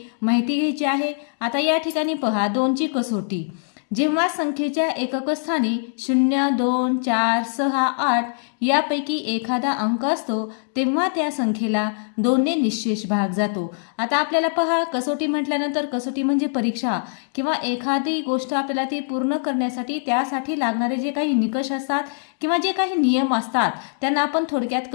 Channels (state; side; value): silent; right; digital silence